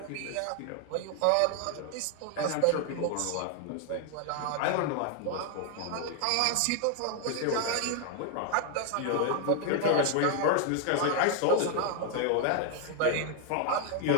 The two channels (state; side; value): different; both; correlation 0.00